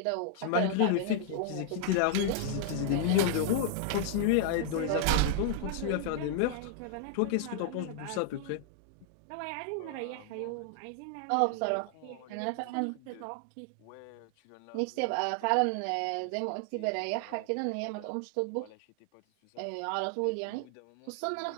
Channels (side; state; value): both; different; correlation -0.01